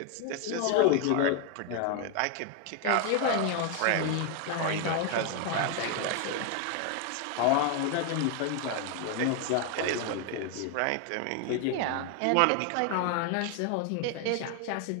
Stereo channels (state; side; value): different; both; correlation 0.01